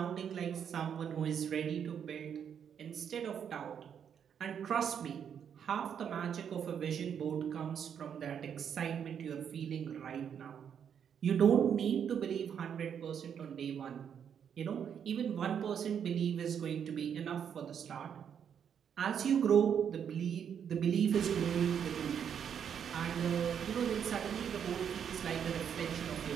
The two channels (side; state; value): left; quieter; 8.1 dB